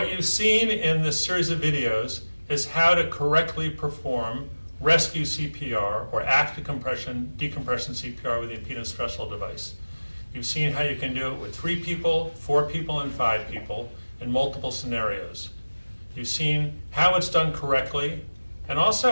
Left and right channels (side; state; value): both; inverted; correlation -1.00